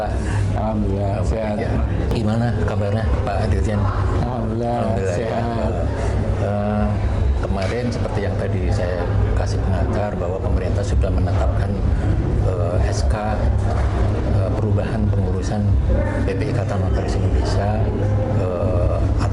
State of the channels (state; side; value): identical; both; correlation 1.00